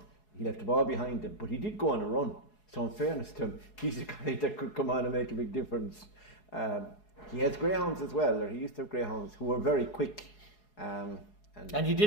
He left the ball behind him, but he did go on a run. So in fairness to him, he's a guy that could come on and make a big difference. He has greyhounds as well, or he used to have greyhounds who were very quick. And he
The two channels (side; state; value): right; late; 4.7 ms